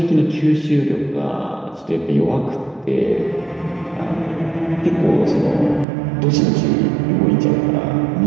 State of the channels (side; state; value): left; drops out; at 5.9 s